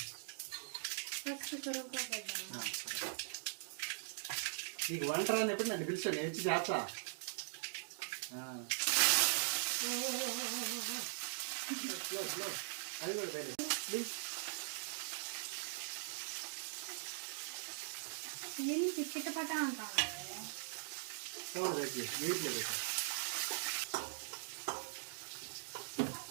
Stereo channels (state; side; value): silent; left; digital silence